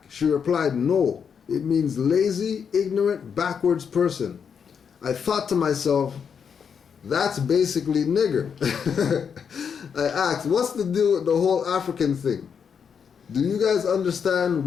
She replied, no, it means lazy, ignorant, backwards person. I thought to myself, that's basically nigger. I asked, what's the deal with the whole African thing? Do you guys understand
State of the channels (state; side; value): quieter; right; 6.9 dB